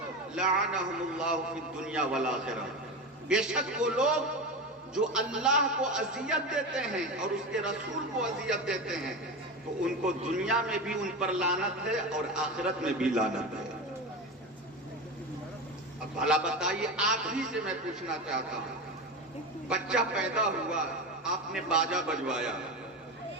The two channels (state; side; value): normal; both; correlation 0.22